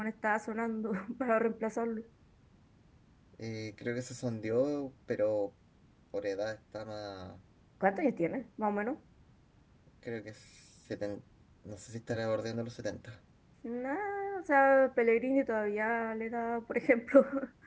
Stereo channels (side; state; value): both; identical; correlation 1.00